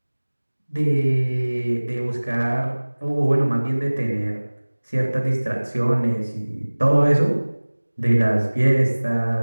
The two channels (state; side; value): inverted; both; correlation -1.00